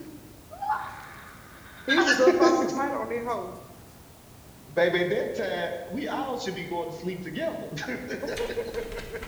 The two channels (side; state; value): both; identical; correlation 1.00